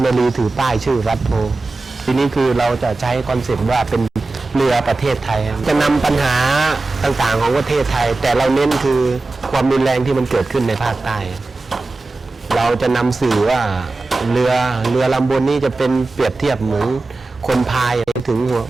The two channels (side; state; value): left; quieter; 3.3 dB